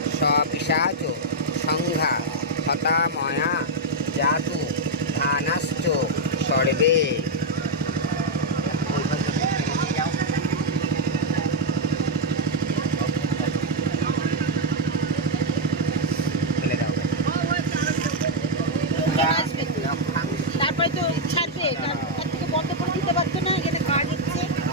সপিশাচ সংঘা হতাময়া জাতু ধানাশ্চ সর্বে। তারপরে তো ছাড়বে, তার থেকে বন্ধ করে দিতে পারতো না, এখানে কাজ হচ্ছে।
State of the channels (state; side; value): normal; both; correlation 0.00